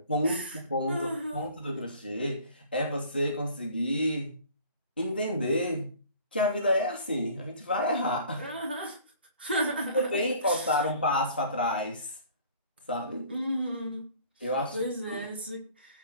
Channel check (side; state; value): both; inverted; correlation -0.51